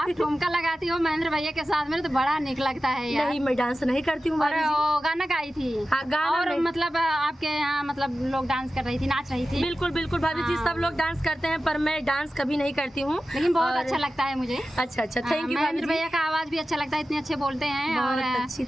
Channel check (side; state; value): both; normal; correlation 0.94